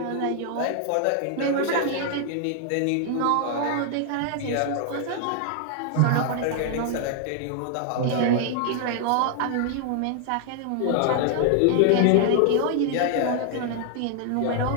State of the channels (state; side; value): different; both; correlation 0.00